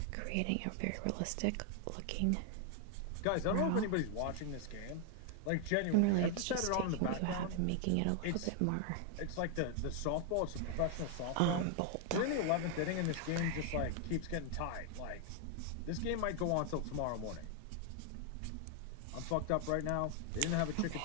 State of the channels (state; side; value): different; both; correlation 0.00